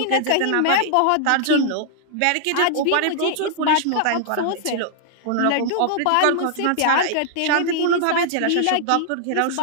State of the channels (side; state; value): both; different; correlation -0.01